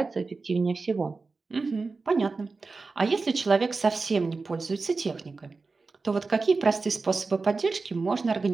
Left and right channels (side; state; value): left; quieter; 4.1 dB